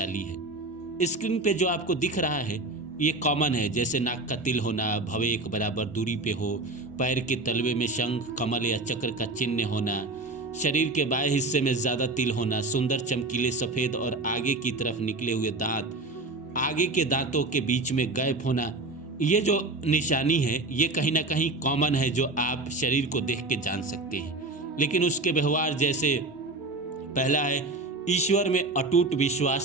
है। स्क्रीन पे जो आपको दिख रहा है ये कॉमन है, जैसे नाक का तिल होना, भवें एक बराबर दूरी पे हो, पैर के तलवे में शंख, कमल या चक्र का चिन्ह होना, शरीर के बाएं हिस्से में ज़्यादा तिल होना, सुंदर चमकीले सफ़ेद और आगे की तरफ निकले हुए दांत, आगे के दांतों के बीच में गैप होना। ये जो निशानी है ये कहीं ना कहीं कॉमन है, जो आप शरीर को देख के जान सकते हैं। लेकिन उसके व्यवहार, जैसे पहला है ईश्वर में अटूट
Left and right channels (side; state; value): left; quieter; 3.1 dB